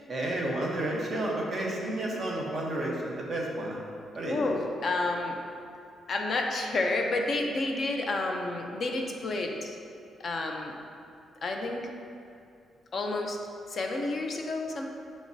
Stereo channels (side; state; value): both; normal; correlation 0.79